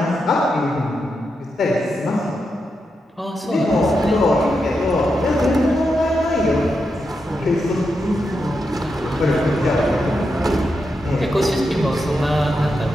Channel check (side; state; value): both; normal; correlation 0.86